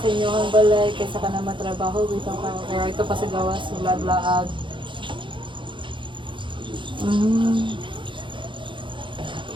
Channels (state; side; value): late; left; 0.24 ms